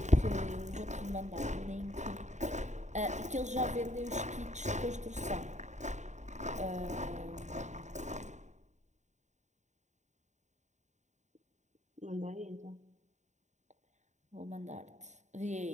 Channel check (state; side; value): late; left; 0.34 ms